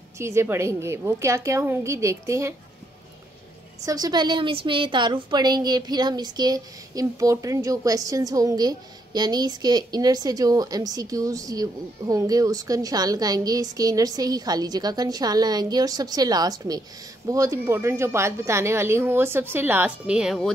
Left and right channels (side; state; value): both; normal; correlation 0.75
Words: चीज़ें पढ़ेंगे। वो क्या क्या होंगी देखते हैं। सबसे पहले हम इसमें तारुफ पढ़ेंगे, फिर हम इसके इम्पोर्टेंट जो क्वेश्चंस होंगे, यानी इसके इनर से जो MCQs होंगे उसका निशान लगाएंगे, इसके इनर से ही खाली जगह का निशान लगाएंगे, और सबसे लास्ट में बहुत इम्पोर्टेंट जो बात बताने वाली हूँ वो सबसे लास्ट में है, वो